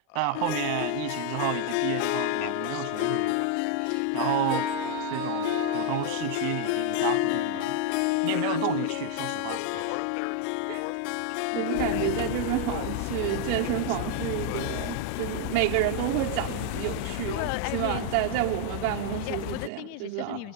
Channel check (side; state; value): both; different; correlation 0.00